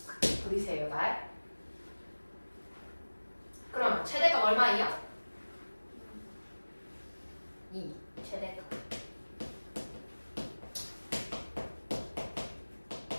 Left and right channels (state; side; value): inverted; both; correlation -1.00